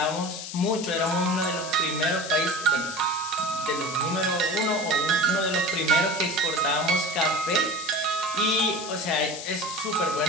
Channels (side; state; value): left; noise; hiss, 9 dB below the sound